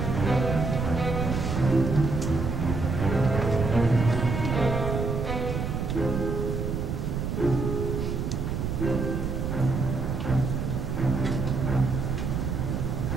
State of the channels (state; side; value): noise; right; rumble, 2 dB below the sound